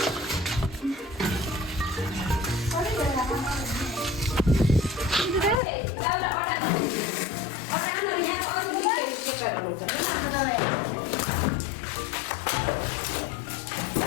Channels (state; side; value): drops out; right; at 5.6 s